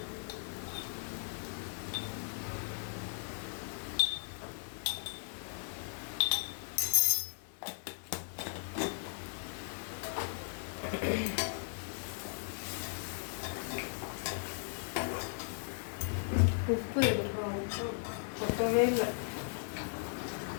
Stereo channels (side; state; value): right; silent; 53 dB below the other